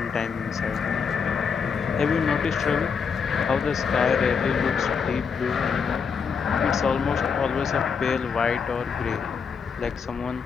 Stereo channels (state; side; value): quieter; right; 6.0 dB